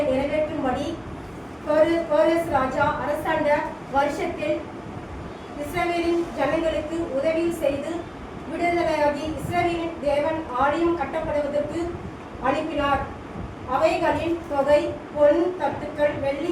நிறைவேற்றும்படி கோரஸ் ராஜா அரசாண்ட வருஷத்தில் இஸ்ரவேலின் ஜனங்களுக்கு உதவி செய்து விடுதலையாகி இஸ்ரவேலின் தேவன் ஆலயம் கட்டப்படுவதற்கு அனுப்பினார். அவைகளின் தொகை பொன் தட்டுக்கள் வெள்ளி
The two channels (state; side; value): identical; both; correlation 1.00